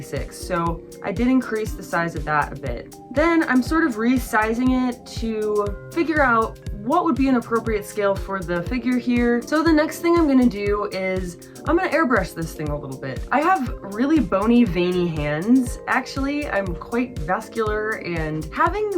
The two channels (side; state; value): both; identical; correlation 1.00